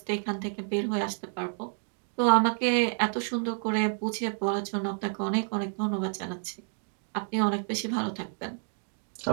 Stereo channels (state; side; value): silent; left; 56 dB below the other